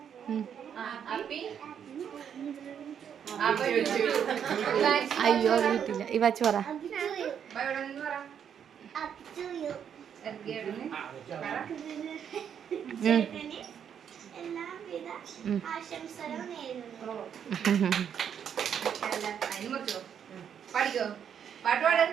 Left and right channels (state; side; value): quieter; left; 8.3 dB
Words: അയ്യോ വീട്ടില്ല ഈ വച്ച് പറ. എല്ലാവിധ ആശംസകളും നേരുന്നു. പഠിക്കോ പാട്ട് പാട്.